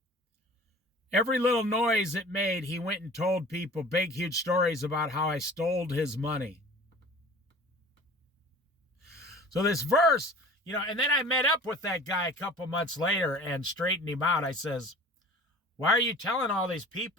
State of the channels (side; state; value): both; normal; correlation 0.43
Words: Every little noise it made, he went and told people big, huge stories about how I stole his money. So this verse, you know, and then I met up with that guy a couple months later and straightened him out. I says, why are you telling all these